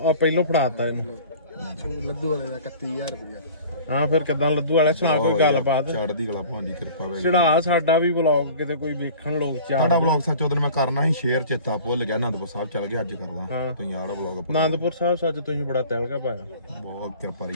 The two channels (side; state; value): both; inverted; correlation -0.45